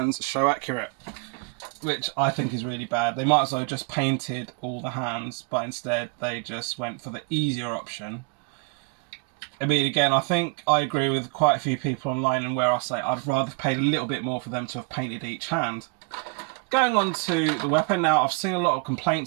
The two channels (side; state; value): left; quieter; 33.6 dB